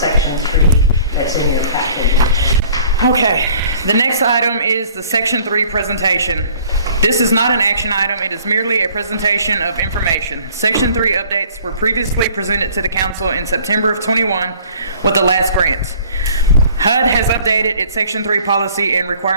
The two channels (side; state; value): both; inverted; correlation -0.53